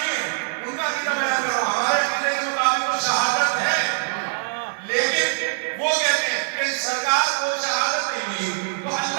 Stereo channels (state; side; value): silent; left; 63 dB below the other